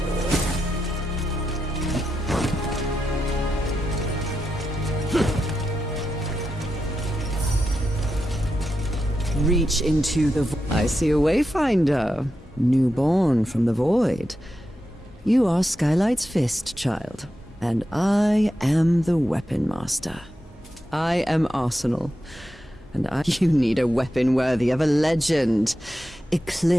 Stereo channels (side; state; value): both; normal; correlation 0.88